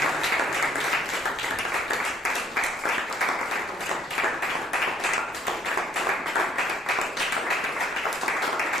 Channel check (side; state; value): both; normal; correlation 0.63